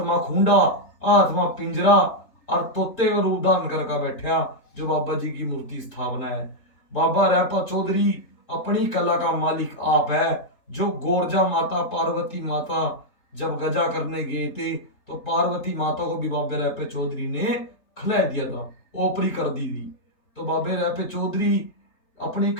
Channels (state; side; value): late; right; 3.8 ms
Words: खूंडा, आत्मा पिंजरा, और तोते का रूप धारण करके बैठा जो बाबा जी की मूर्ति स्थापना है। बाबा रैपा चौधरी अपनी कला का मालिक आप है। जो गोरजा माता पार्वती माता जब गजा करने गए थे तो पार्वती माता को भी बाबे रैपे चौधरी ने खिला दिया था, ओपरी कर दी थी। तो बाबे रैपे चौधरी अपनी